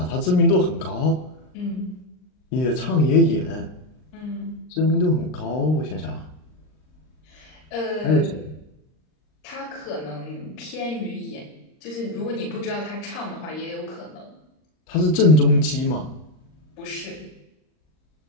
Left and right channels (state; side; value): late; right; 39 ms